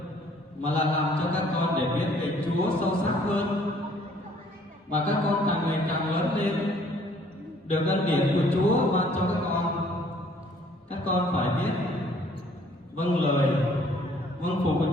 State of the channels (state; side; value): normal; both; correlation 0.60